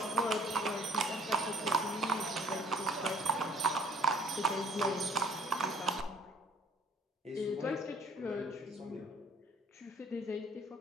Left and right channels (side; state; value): both; normal; correlation 0.55